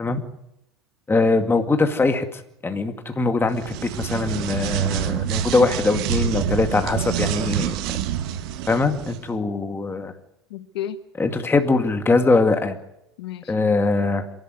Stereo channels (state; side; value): normal; both; correlation 0.64